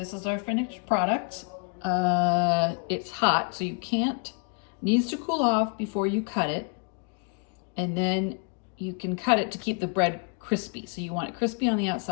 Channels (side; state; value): right; quieter; 39.2 dB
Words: is our finished product. It's hot, so you can't, needs to cool off before you cut it. And then you can cut it to keep the bread crispy. So you want it crispy on the